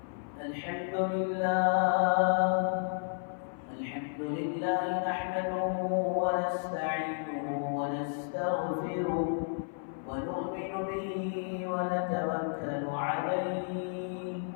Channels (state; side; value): silent; right; 56 dB below the other